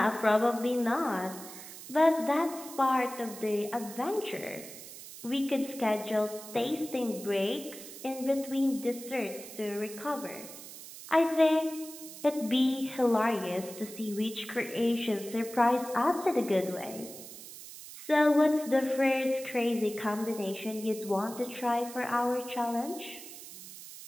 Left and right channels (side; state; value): right; noise; hiss, 14 dB below the sound